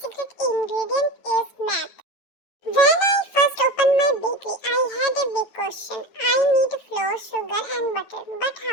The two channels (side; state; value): right; late; 9.0 ms